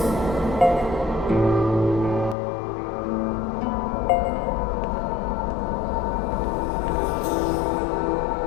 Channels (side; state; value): right; drops out; at 2.4 s